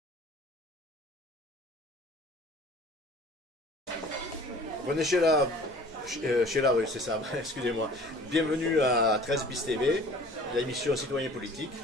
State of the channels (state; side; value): normal; both; correlation 0.47